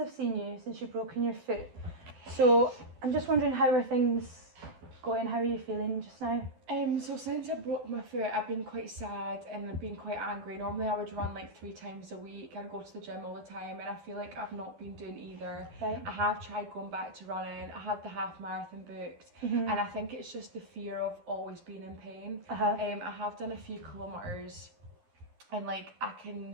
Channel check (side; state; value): left; late; 12 ms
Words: seen you, since you've broken your foot. So I'm just wondering, how are things going? How are you feeling just now? So since I broke my foot, I've been quite sad and I've been quite angry. Normally I would run like 3 times a week. I go to the gym all the time and I feel like I've not been doing either. Right. I have tried going back to running. I had the half marathon booked, Mhm. and I think it's just the fear of always being in pain. Uh-huh. I have done a few kilometres, and like I